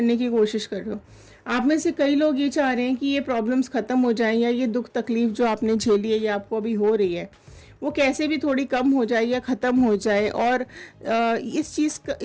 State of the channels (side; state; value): both; identical; correlation 1.00